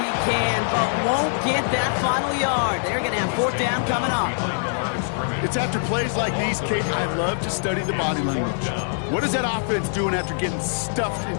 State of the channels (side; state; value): right; silent; 63 dB below the other